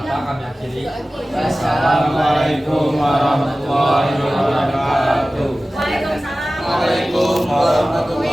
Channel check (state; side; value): normal; both; correlation 0.96